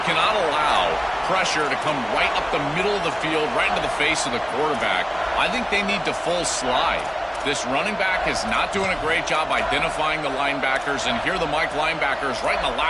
cannot allow pressure to come right up the middle of the field, right into the face of the quarterback. I think they need to full slide. This running back is not doing a great job identifying the linebackers, and here the Mike linebackers right in the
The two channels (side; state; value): both; identical; correlation 1.00